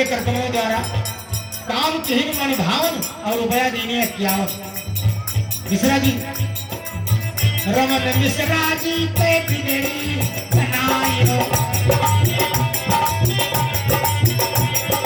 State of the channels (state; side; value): identical; both; correlation 1.00